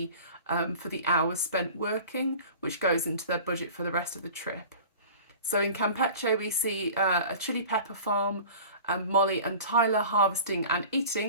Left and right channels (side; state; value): both; inverted; correlation -0.41